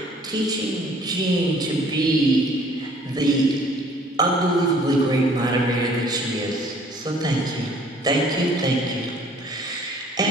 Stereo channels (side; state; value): both; normal; correlation 0.56